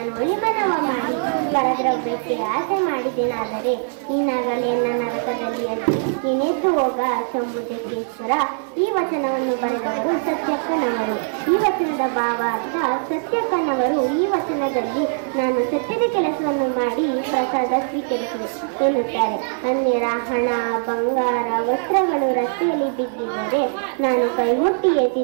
ಒಳಿಮನವ ಮಾಡಿ ಪರದ್ರವ್ಯಕ್ಕೆ ಆಸೆ ಮಾಡಿದೆನಾದರೆ ನೀನಾಗಲೇ ನನ್ನ ನರಕದಲ್ಲಿ ಅಜ್ಜಿ ನೀನೆದ್ದು ಹೋಗ ಸಂಬುಜಕ್ಕೇಶ್ವರ. ಈ ವಚನವನ್ನು ಬರೆದವರು ಸತ್ಯಕ್ಕನವರು. ಈ ವಚನದ ಭಾವ ಅರ್ಥ ಸತ್ಯಕ್ಕನವರು ಈ ವಚನದಲ್ಲಿ ನಾನು ಸತ್ಯದ ಕೆಲಸವನ್ನು ಮಾಡಿ ಪ್ರಸಾದ ಸ್ವೀಕರಿಸಿದೆ ಎನ್ನುತ್ತಾರೆ. ಅನ್ಯರ ಹಣ ಬಂಗಾರ ವಸ್ತ್ರಗಳು ರಸ್ತೆಯಲ್ಲಿ ಬಿದ್ದಿದ್ದರೆ ನಾನು ಕೈ ಮುಟ್ಟಿ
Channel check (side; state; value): left; silent; digital silence